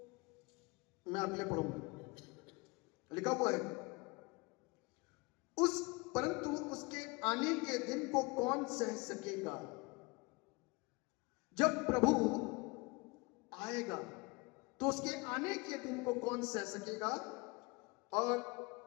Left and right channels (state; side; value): quieter; right; 26.4 dB